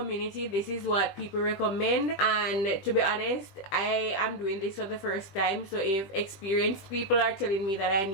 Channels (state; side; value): late; right; 20 ms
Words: this is what people recommend. And to be honest, I am doing this for the first time, so if experienced people are telling me that I